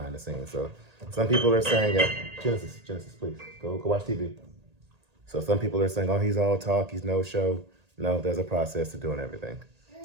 the scenes. So some people are saying, Genesis, please, go watch TV. So some people are saying, oh, he's all talk, he's no show. No, there's a process to doing everything.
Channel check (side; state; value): left; late; 1.8 ms